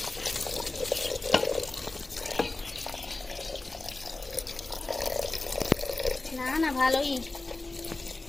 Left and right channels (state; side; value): quieter; right; 3.1 dB